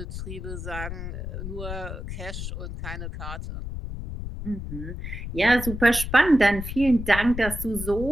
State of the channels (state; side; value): noise; left; rumble, 7 dB below the sound